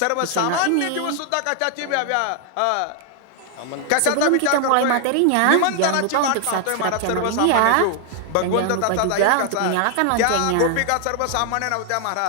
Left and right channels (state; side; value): different; both; correlation 0.00